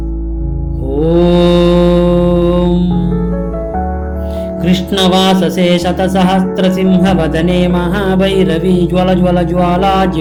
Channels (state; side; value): identical; both; correlation 1.00